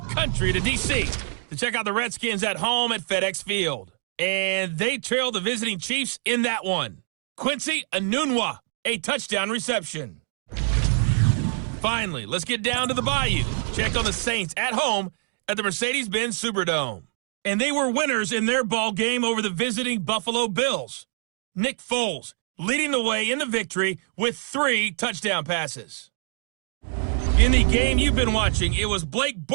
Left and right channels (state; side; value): silent; left; 62 dB below the other